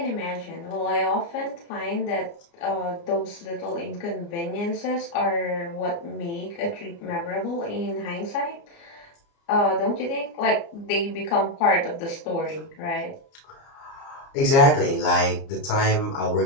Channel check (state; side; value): late; right; 29 ms